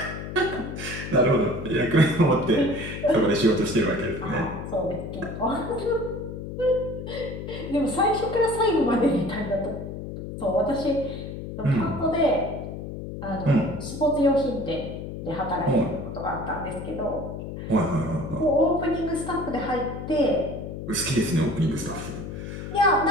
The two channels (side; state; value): left; noise; hum, 8 dB below the sound